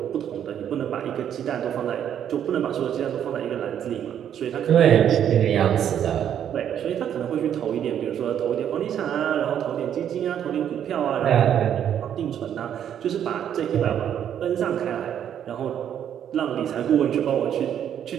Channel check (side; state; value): left; quieter; 9.5 dB